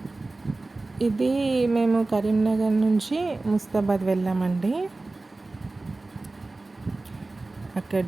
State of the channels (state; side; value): quieter; left; 3.2 dB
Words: ఇది మేము కరీంనగర్ నుంచి ముస్తాబాద్ వెళ్ళామండి. అక్కడ